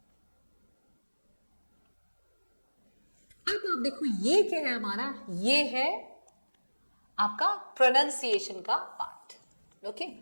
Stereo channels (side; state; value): both; inverted; correlation -1.00